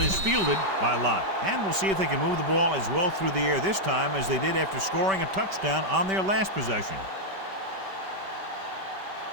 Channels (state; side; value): late; left; 5.2 ms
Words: is fielded by Lott. And we'll see if they can move the ball as well through the air this time as they did after scoring a touchdown on their last possession.